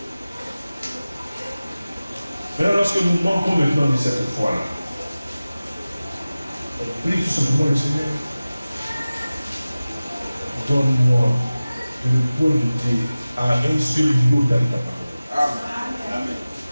Maintenant, lorsque nous manquons maintenant de cette foi-là, on prie tout simplement le Seigneur. Donne-moi de le pointer à un seul niveau dans ta parole. Amen.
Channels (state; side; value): inverted; both; correlation -0.97